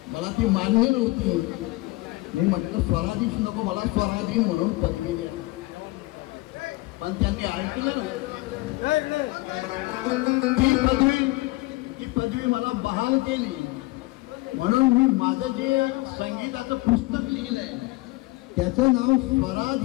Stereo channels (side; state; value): right; quieter; 21.6 dB